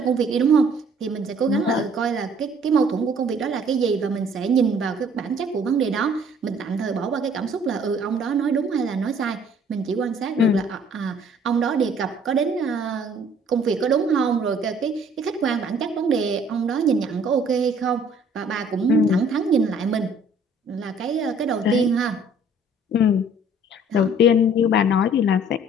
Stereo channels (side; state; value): both; normal; correlation 0.56